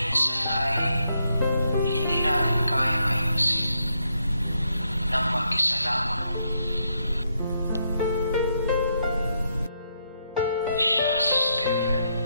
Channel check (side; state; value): both; inverted; correlation -0.78